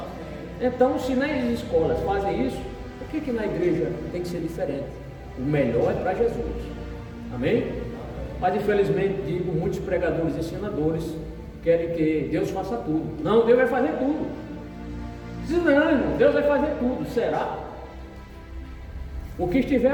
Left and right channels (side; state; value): both; identical; correlation 1.00